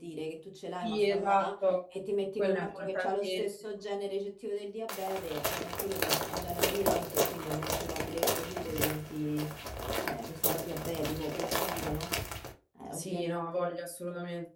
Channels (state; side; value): identical; both; correlation 1.00